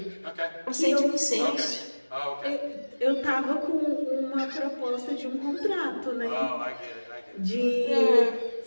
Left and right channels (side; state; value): both; inverted; correlation -1.00